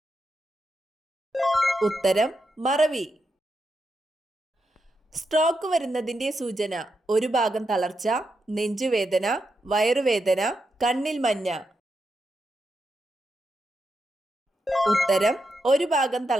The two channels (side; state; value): both; normal; correlation 0.85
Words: ഉത്തരം മറവി. സ്ട്രോക്ക് വരുന്നതിന്റെ സൂചന: ഒരു ഭാഗം തളർച്ച, നെഞ്ചുവേദന, വയറുവേദന, കണ്ണിൽ മഞ്ഞ. ഉത്തരം ഒരു ഭാഗം